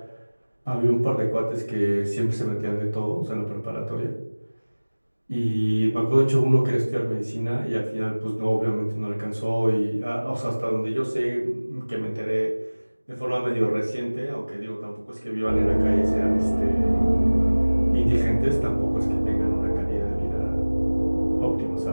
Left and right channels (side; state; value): both; inverted; correlation -1.00